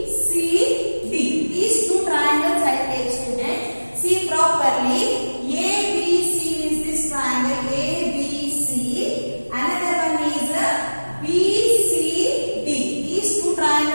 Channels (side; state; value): both; inverted; correlation -1.00